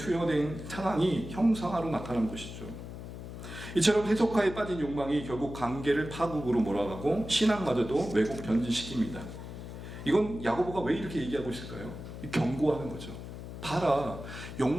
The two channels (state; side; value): noise; left; hum, 10 dB below the sound